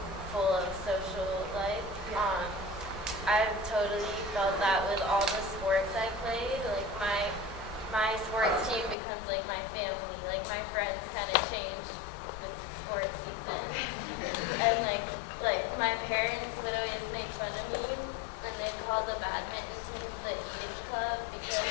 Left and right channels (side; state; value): right; drops out; at 9.0 s